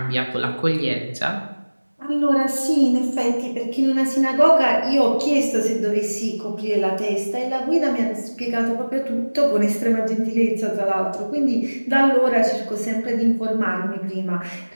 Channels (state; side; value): inverted; both; correlation -1.00